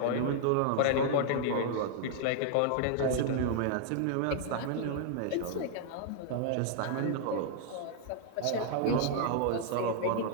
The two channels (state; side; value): different; both; correlation -0.01